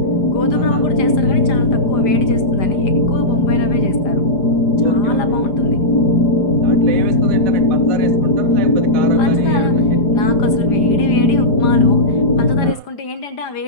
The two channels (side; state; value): right; late; 5.0 ms